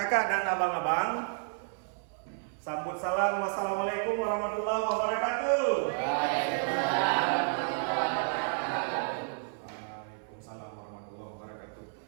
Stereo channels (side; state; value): left; silent; 57 dB below the other